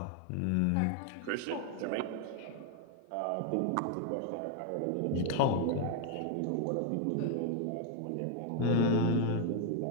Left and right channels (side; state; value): both; different; correlation 0.01